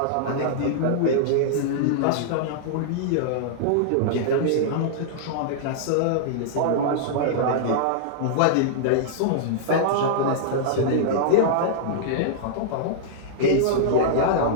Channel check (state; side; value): different; both; correlation -0.02